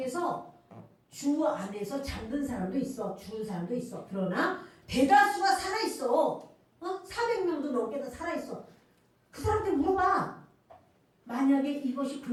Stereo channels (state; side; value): identical; both; correlation 1.00